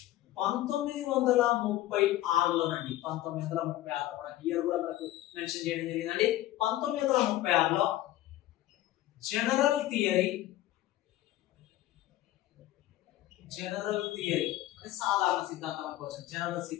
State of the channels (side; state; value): right; quieter; 15.0 dB